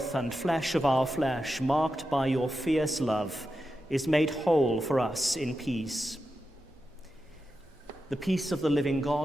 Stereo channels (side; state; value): both; normal; correlation 0.90